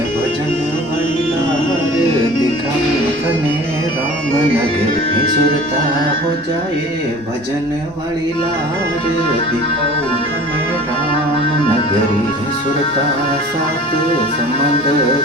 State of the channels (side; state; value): both; normal; correlation 0.43